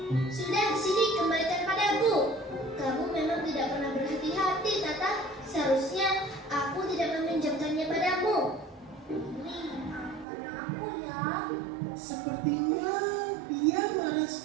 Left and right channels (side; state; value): left; drops out; at 10.2 s